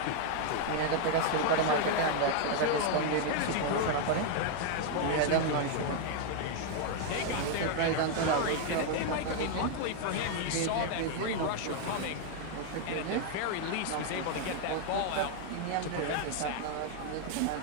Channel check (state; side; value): different; both; correlation 0.00